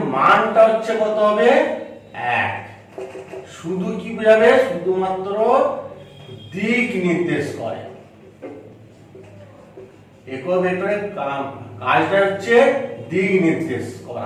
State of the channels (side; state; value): both; identical; correlation 1.00